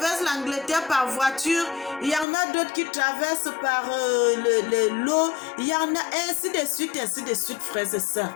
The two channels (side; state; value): right; drops out; at 2.2 s